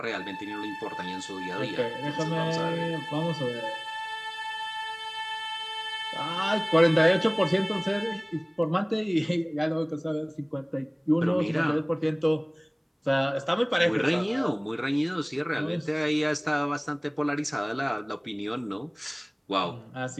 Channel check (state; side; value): identical; both; correlation 1.00